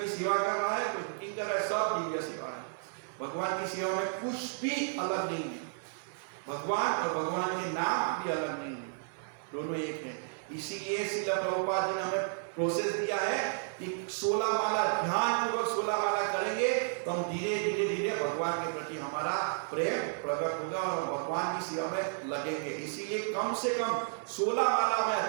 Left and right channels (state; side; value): silent; left; digital silence